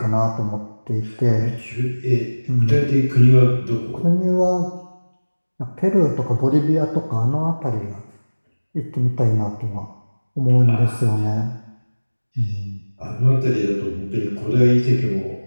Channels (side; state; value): both; inverted; correlation -1.00